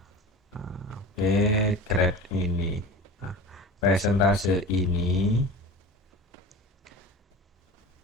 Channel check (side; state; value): both; normal; correlation 0.34